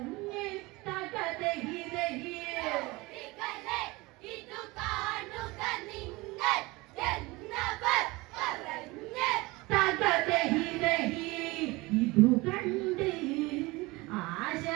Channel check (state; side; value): quieter; left; 22.7 dB